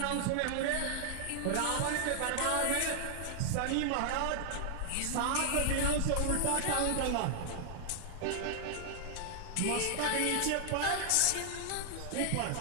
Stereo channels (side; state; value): both; different; correlation 0.00